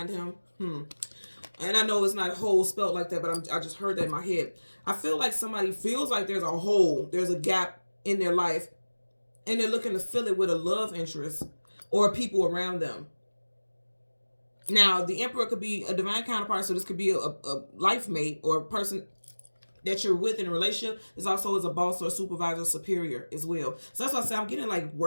him. And I know it's not whole spelled like that, but I just heard that in my head. I feel like somebody feels like there's a hole, there's a gap in their life, and they're looking to fill it with a love interest or people around them. Now, the Emperor could be a divine counterpart, so this could be a life mate or a person that you're with in a relationship. Is also as a boss or a supervisor, superior as well. So that's why I say I'm getting like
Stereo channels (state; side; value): inverted; both; correlation -1.00